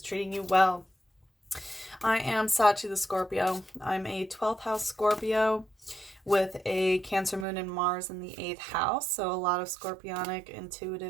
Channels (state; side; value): drops out; left; at 7.5 s